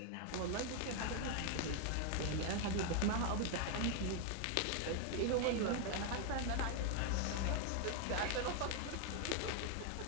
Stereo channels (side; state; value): both; different; correlation 0.00